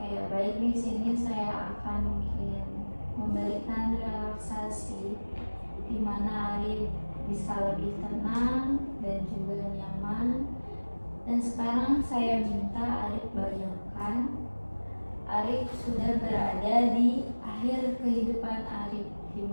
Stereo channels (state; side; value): inverted; both; correlation -1.00